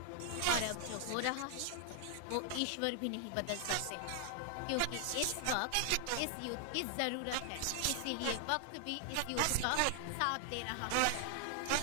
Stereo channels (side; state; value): both; different; correlation 0.00